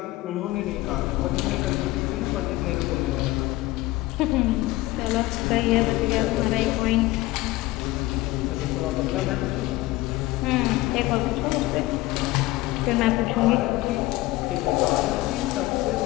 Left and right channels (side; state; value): right; quieter; 18.8 dB